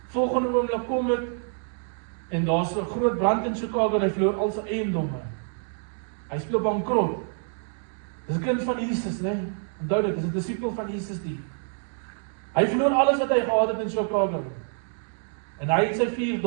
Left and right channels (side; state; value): left; silent; 60 dB below the other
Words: Volgende oomblik kom dit en daar's 'n groot brand in Chicago en hy verloor al sy eiendomme. Hy speel bankrot. Dis 'n kind van Jesus, né? Onthou dit, dis 'n disipel van Jesus die. Hy verloor alles wat hy gehad het in Chicago. En hy het sy 4